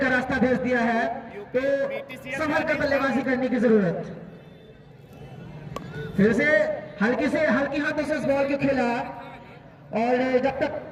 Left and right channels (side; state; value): both; identical; correlation 1.00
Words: रास्ता भेज दिया है। तो संभल कर बल्लेबाजी करने की जरूरत। फिर से हल्की हाथों से इस बॉल को खेला और जब तक